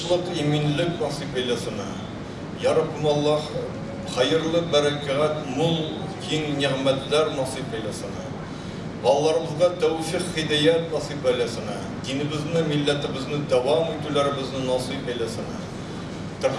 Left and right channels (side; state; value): both; identical; correlation 1.00